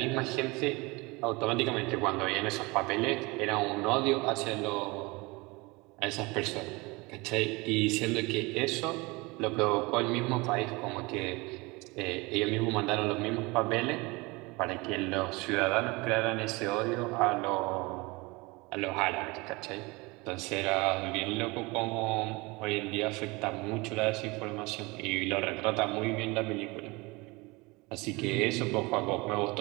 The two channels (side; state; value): left; quieter; 24.7 dB